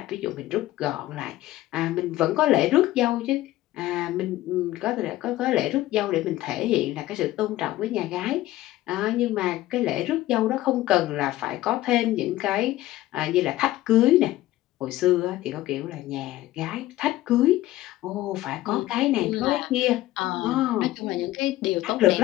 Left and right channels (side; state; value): right; quieter; 15.9 dB